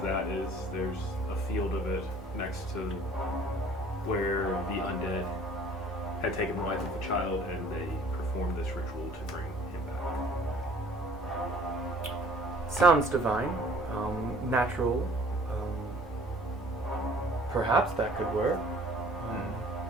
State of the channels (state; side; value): normal; both; correlation 0.52